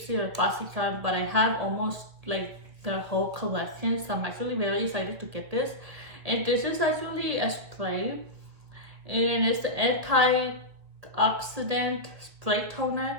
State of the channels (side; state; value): left; late; 2.0 ms